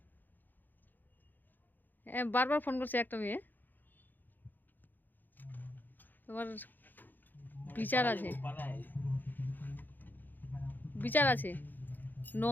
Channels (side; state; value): right; late; 0.088 ms